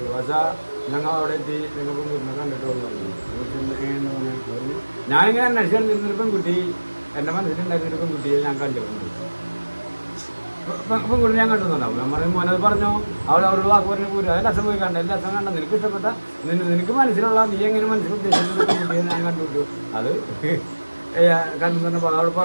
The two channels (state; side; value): inverted; both; correlation -1.00